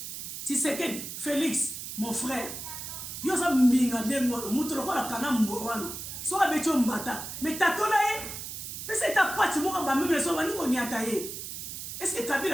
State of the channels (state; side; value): noise; right; hiss, 8 dB below the sound